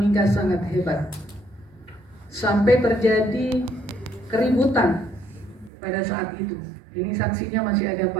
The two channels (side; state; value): left; drops out; at 5.7 s